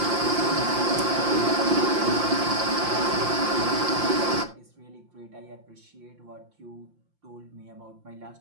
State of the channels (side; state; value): left; late; 5.7 ms